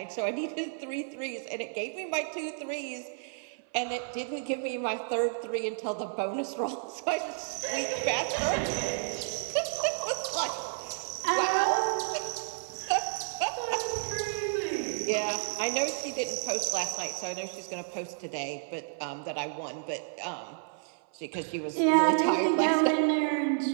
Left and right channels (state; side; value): silent; left; 57 dB below the other